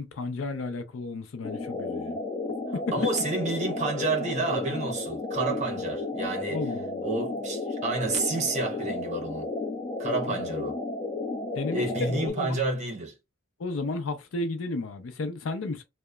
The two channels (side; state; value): both; normal; correlation 0.27